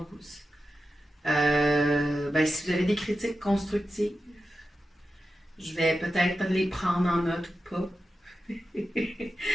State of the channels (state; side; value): normal; both; correlation 0.91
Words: Si vous avez des critiques constructives, je vais peut-être les prendre en note ou pas.